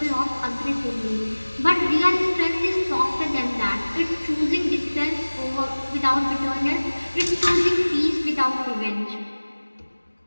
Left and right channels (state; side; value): inverted; both; correlation -1.00